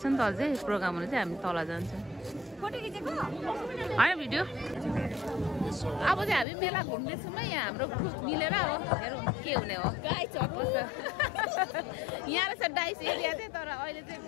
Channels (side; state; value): right; drops out; at 6.5 s